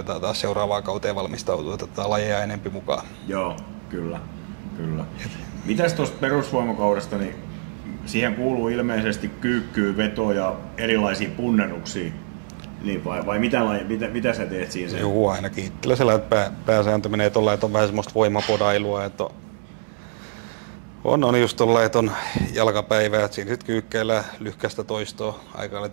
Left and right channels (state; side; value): silent; left; digital silence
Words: taas seuraavaan kauteen valmistautua, että otetaan lajeja enempi mukaan. Kyllä. Mitäs tuosta perusvoimakaudesta, niin siihen kuuluu ilmeisesti kyykkyä, vetoa ja erilaisia punneruksia. Niin vai mitä sä teet siinä? Joo, ainakin itsellä sellainen, että pääsääntö menee tuolla, että on vähän semmoista voimapodailua, että on just tuolla, että on jalkapäivää, että siinä sitten kyykkeillä lyhkäistä toistoa, aika